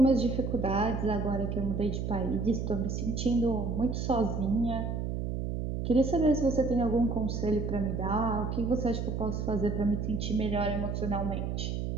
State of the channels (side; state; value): right; noise; hum, 2 dB below the sound